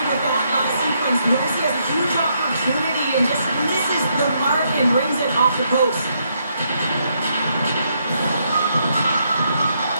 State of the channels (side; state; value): both; inverted; correlation -0.76